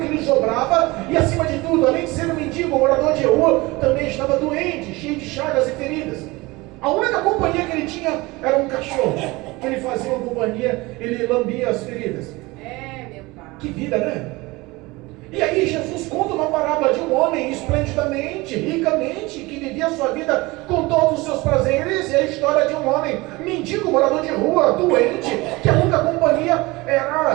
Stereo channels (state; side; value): quieter; left; 22.3 dB